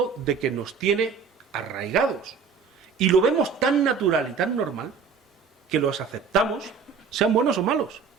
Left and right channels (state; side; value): quieter; left; 5.9 dB